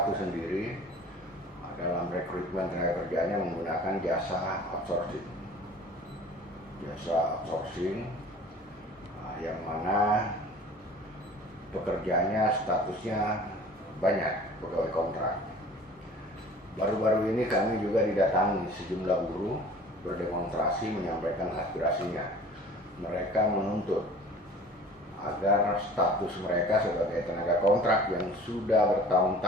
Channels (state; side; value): normal; both; correlation 0.46